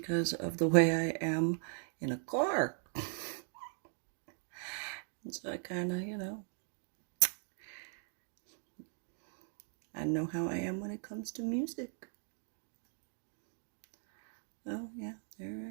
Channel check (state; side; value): silent; left; 52 dB below the other